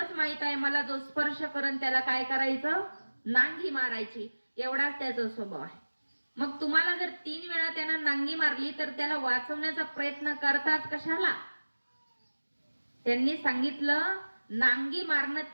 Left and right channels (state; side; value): inverted; both; correlation -1.00